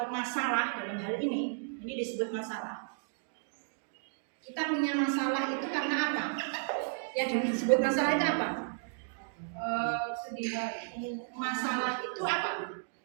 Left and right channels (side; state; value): left; silent; digital silence